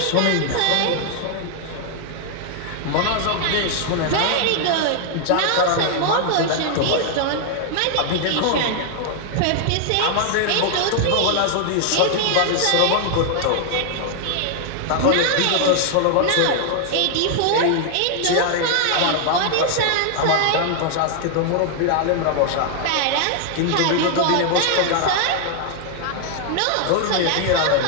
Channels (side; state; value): both; different; correlation 0.00